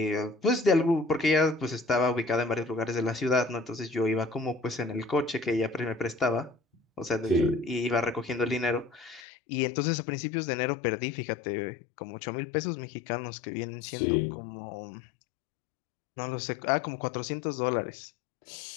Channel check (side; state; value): right; drops out; at 9.2 s